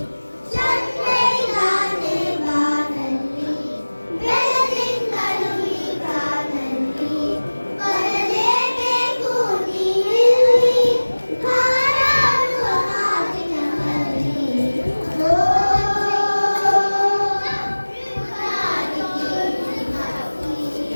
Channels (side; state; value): both; inverted; correlation -1.00